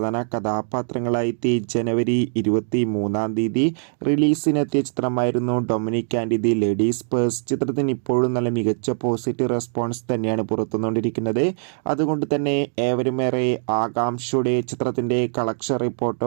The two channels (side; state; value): left; silent; digital silence